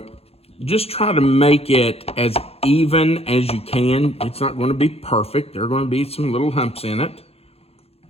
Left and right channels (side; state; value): right; late; 0.29 ms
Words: just try to make it as even as you can. It's not going to be perfect. There are going to be some little humps in it.